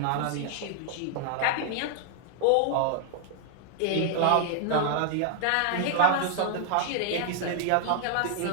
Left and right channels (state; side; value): different; both; correlation 0.00